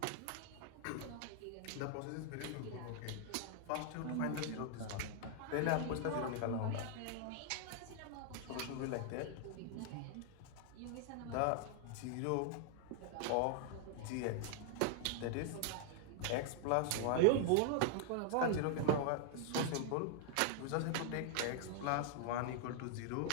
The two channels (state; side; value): different; both; correlation 0.00